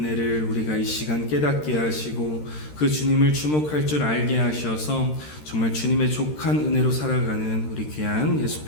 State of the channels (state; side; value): late; right; 13 ms